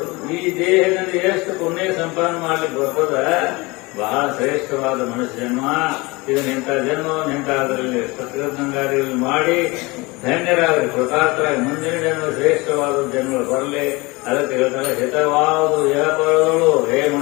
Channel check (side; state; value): right; quieter; 24.1 dB